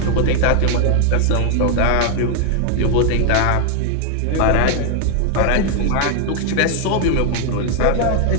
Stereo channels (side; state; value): both; different; correlation 0.00